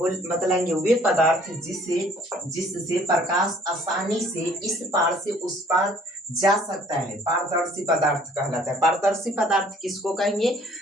बतलाएंगे वे पदार्थ जिससे प्रकाश आसानी से इस पार से उस पार जा सकता है, पारदर्शी पदार्थ कहलाता है। पारदर्शी पदार्थ किसको कहेंगे,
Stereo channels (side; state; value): both; normal; correlation 0.57